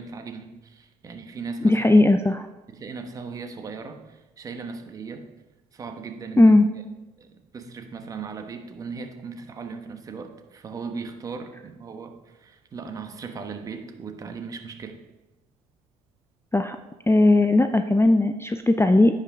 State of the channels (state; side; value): normal; both; correlation 0.93